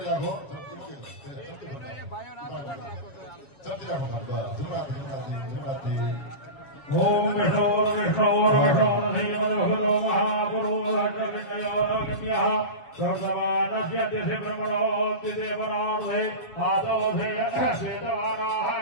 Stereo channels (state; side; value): late; right; 7.2 ms